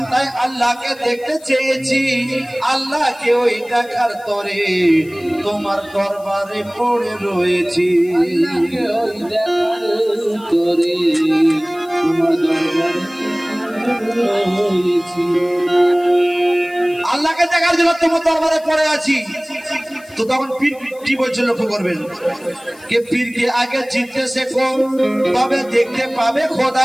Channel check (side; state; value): left; noise; hiss, 25 dB below the sound